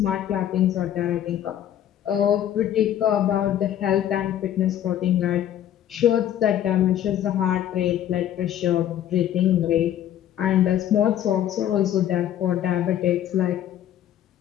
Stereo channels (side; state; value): right; quieter; 11.1 dB